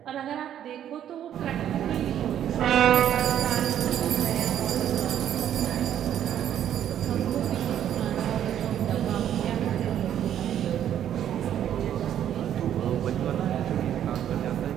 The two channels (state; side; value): quieter; left; 10.4 dB